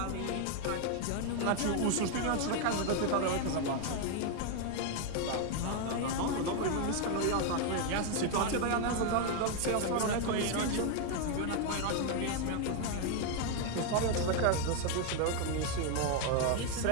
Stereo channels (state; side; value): different; both; correlation 0.01